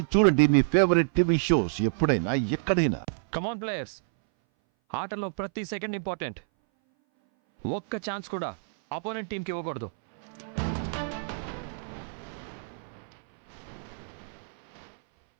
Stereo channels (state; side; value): silent; left; 58 dB below the other